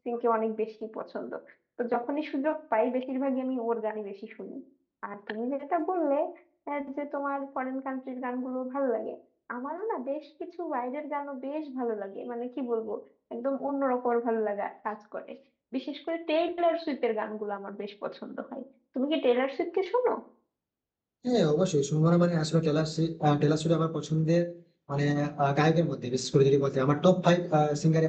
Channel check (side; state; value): both; identical; correlation 1.00